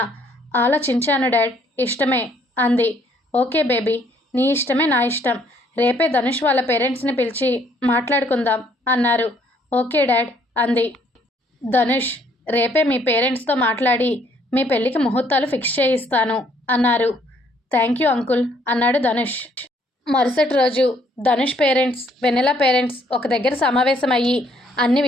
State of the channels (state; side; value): normal; both; correlation 0.65